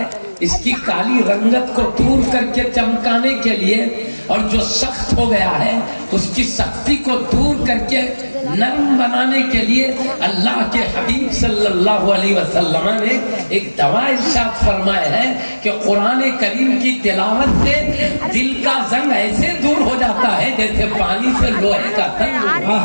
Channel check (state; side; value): inverted; both; correlation -1.00